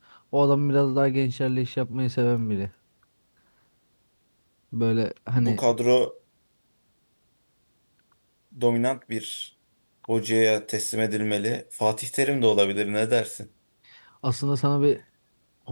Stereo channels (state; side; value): inverted; both; correlation -1.00